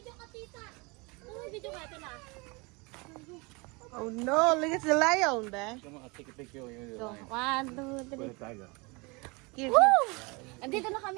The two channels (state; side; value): quieter; left; 27.6 dB